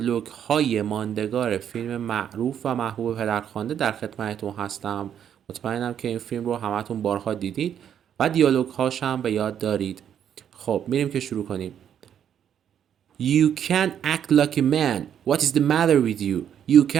های ماندگار فیلم معروف و محبوب پدرخوانده در خدمتتون هستم. مطمئنم که این فیلم رو همتون بارها دیدید و دیالوگ هاش هم به یاد دارید. خب میریم که شروع کنیم. You can't act like a man. What is the matter with you? You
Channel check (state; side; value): quieter; left; 9.1 dB